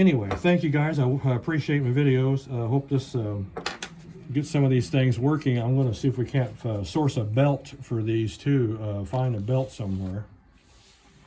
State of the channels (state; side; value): identical; both; correlation 1.00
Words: thank you guys. I appreciate my videos. I hope this get some of these things working. I'm going to see if we can't source a belt for these too. Find a belt somewhere.